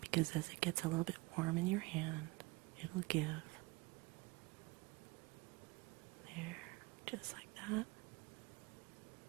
because as it gets a little bit warm in your hand, it'll give. There, just like that.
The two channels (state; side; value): quieter; left; 22.5 dB